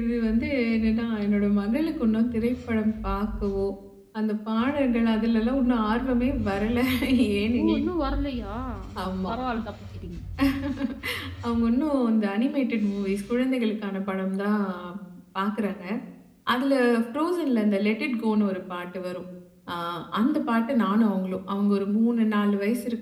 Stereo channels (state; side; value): identical; both; correlation 1.00